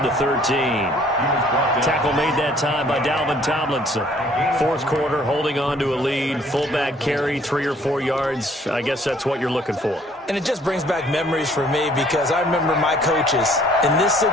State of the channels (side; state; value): both; normal; correlation 0.59